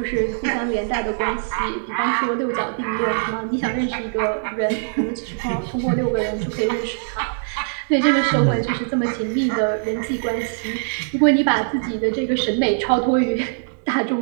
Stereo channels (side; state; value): left; silent; digital silence